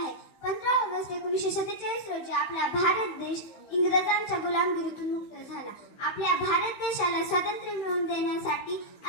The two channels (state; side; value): late; right; 16 ms